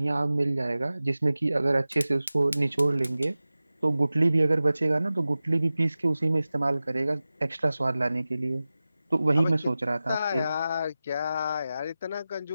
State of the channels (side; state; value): both; inverted; correlation -0.96